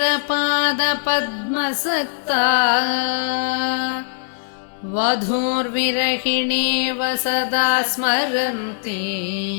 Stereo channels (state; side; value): silent; right; 64 dB below the other